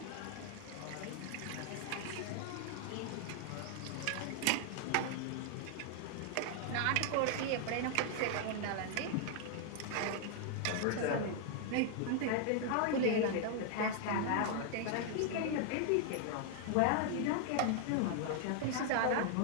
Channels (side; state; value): both; different; correlation 0.00